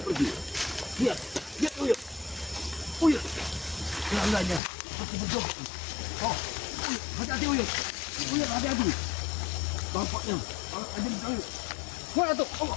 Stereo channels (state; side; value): drops out; right; at 4.6 s